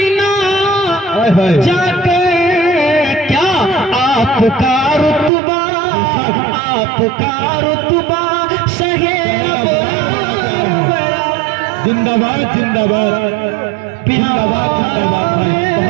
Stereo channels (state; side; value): drops out; left; at 5.3 s